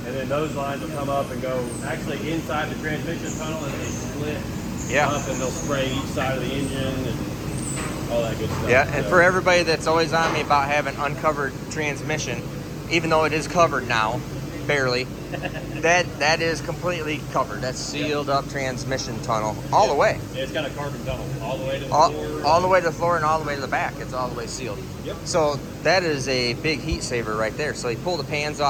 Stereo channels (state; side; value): identical; both; correlation 1.00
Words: And then those lines will come up and go actually inside the transmission tunnel, and they split up, and they'll spray each side of the engine and all that good stuff. Yeah, and for everybody that's always on me about having uncovered transmission, even though it is covered now, barely. That is completely covered. That's sealed up transmission tunnel all the way. Yeah, it's got a carbon tunnel all the way to the floor. All the way to the floor and all the way to the back. It's all the way sealed. Yep. So that is a big heat saver right there. So you pull the pans